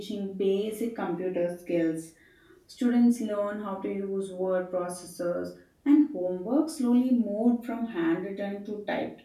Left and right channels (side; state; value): both; identical; correlation 1.00